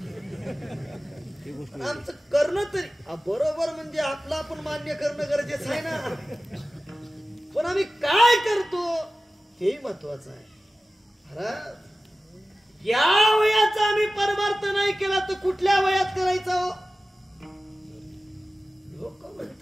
आमचं करणं तरी बरोबर, म्हणजे आपलं आपण मान्य करणं गरजेचं आहे ना, पण आम्ही काय करतो हे महत्वाचं आहे. महाराज, या वयाचा आम्ही परमार्थ नाही केला तर कुठल्या वयात करायचा हो? लोक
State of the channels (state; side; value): normal; both; correlation 0.95